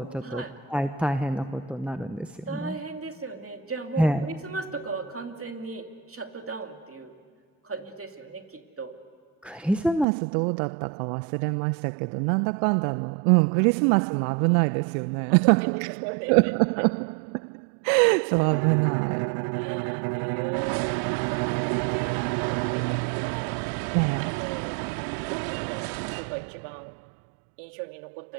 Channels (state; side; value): drops out; left; at 10.1 s